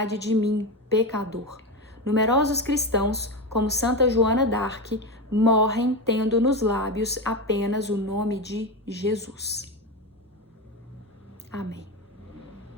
de mim, pecador. Numerosos cristãos, como Santa Joana d'Arc, morrem tendo nos lábios apenas o nome de Jesus. Amém.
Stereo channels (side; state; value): both; normal; correlation 0.17